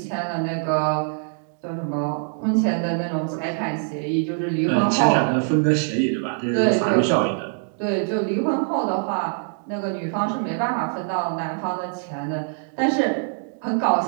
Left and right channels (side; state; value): left; silent; 60 dB below the other